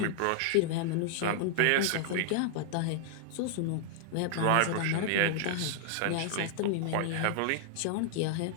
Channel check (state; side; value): different; both; correlation -0.01